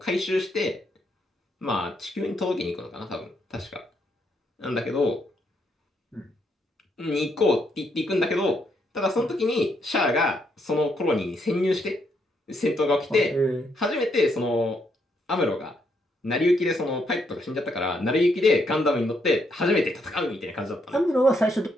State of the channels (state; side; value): normal; both; correlation 0.75